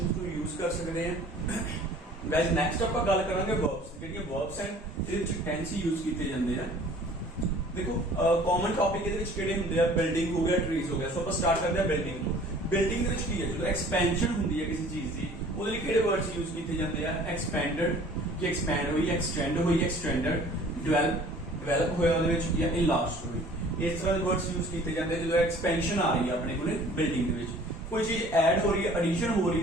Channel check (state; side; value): normal; both; correlation 0.50